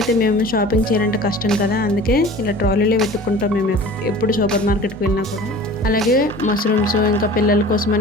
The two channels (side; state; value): both; normal; correlation 0.41